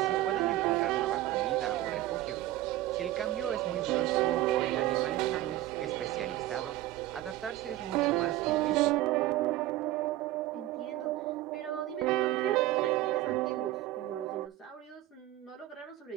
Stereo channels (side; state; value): left; quieter; 15.4 dB